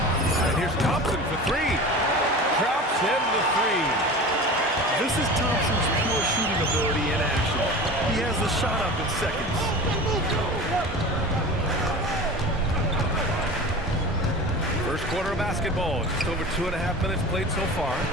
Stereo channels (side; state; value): both; normal; correlation 0.34